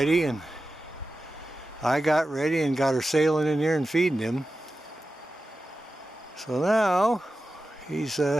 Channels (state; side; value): normal; both; correlation 0.93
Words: and I got ready and got her sailing in here and feeding him. So now he's